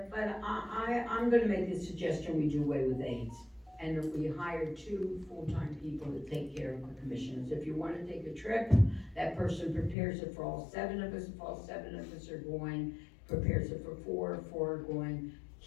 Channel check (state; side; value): drops out; right; at 10.0 s